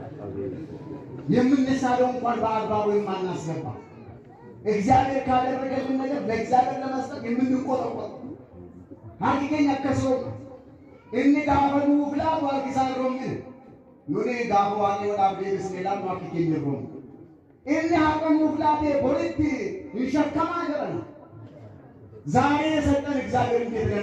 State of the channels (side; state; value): both; identical; correlation 1.00